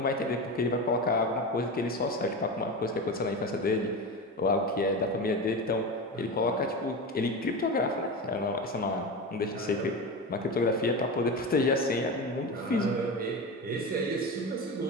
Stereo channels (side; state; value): both; normal; correlation 0.23